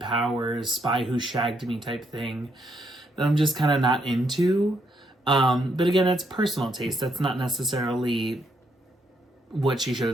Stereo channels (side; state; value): both; normal; correlation 0.75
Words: Spy Who Shagged Me type thing that I'm just kind of not into. But again, that's personal taste. That's not necessarily what she should